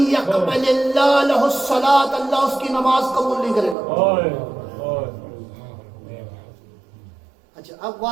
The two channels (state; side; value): drops out; left; at 3.8 s